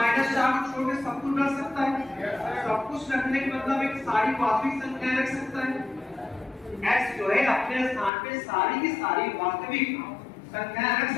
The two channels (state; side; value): drops out; right; at 8.1 s